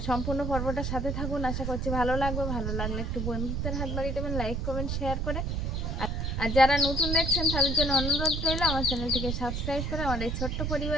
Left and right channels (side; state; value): right; noise; rumble, 1 dB below the sound